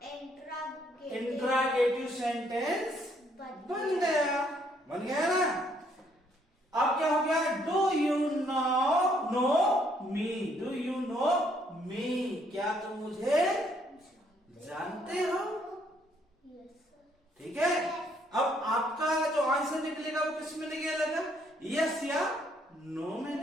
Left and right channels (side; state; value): both; normal; correlation 0.68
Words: इंट्रागेटिव सेंटेंस बन गया। बन गया ना? अब क्या हो गया? Do you know me. Do you know me. क्या तुम मुझे जानते हो? ठीक है। अब आपका जो आंसर निकलेगा वो किस में निकलेगा? यस या नो में